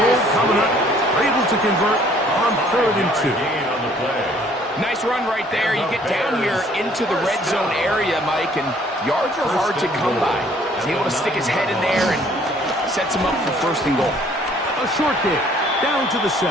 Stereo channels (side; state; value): both; normal; correlation 0.59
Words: coming up. Able to convert on third and 2. Nice run right there. You get down here into the red zone area, Mike, and yards are hard to come by. He's able to stick his head in there and sets him up for first and goal. A short kick down to the